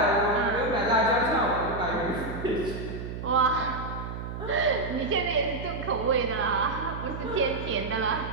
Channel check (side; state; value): right; noise; hum, 7 dB below the sound